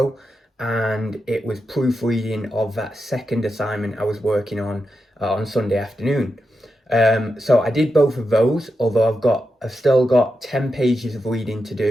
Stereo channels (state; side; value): normal; both; correlation 0.87